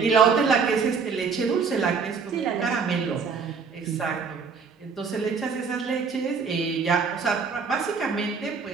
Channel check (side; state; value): left; quieter; 5.5 dB